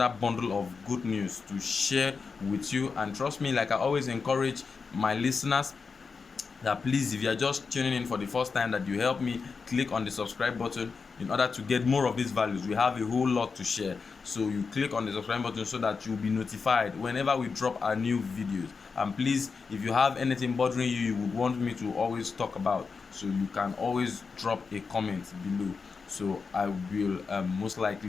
bundle of good news to share with you. And trust me, like I always encourage my listeners, that please, if you are just tuning in for the first time, that you help me click on the subscribe button in order to get more of these values. We have a whole lot to share, so you click on the subscribe button so that you'll be notified whenever we drop our new videos. And please, if you have anything bothering you would want me to always talk about, so you can always drop a comment below, so I will most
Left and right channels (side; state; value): right; quieter; 5.0 dB